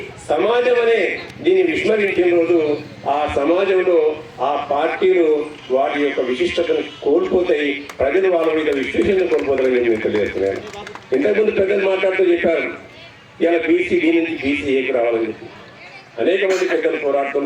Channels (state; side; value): identical; both; correlation 1.00